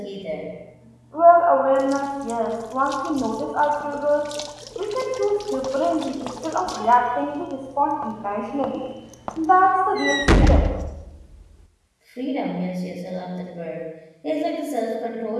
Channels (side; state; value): both; identical; correlation 1.00